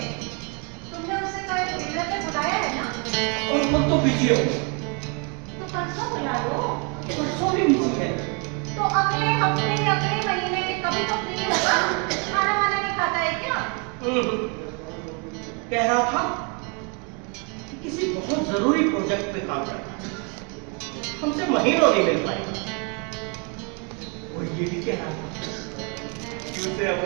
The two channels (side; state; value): left; quieter; 35.1 dB